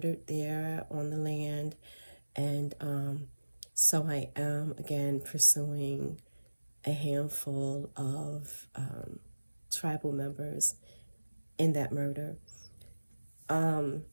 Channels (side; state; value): both; inverted; correlation -1.00